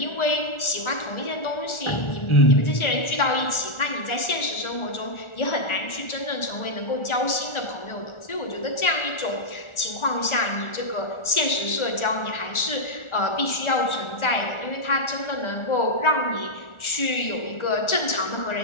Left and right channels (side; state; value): right; late; 1.4 ms